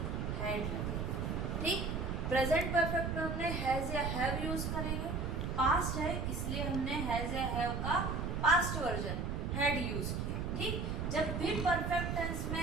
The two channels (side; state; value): right; noise; rumble, 1 dB below the sound